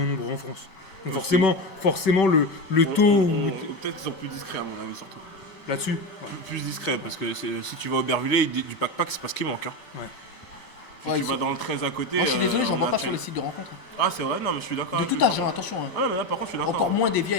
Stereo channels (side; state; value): right; late; 5.3 ms